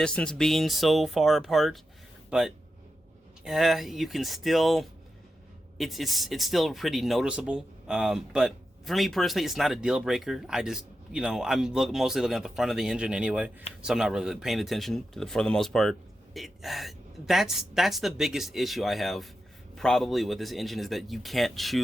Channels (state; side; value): normal; both; correlation 0.89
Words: being so far apart, but you can still, it's still pretty noticeable. But for me personally, it's not a deal breaker. I just, I'm mostly looking at the front of the engine anyway, so I'm not really paying attention to for the most part. That's the biggest issue I have probably with this engine, is that you can't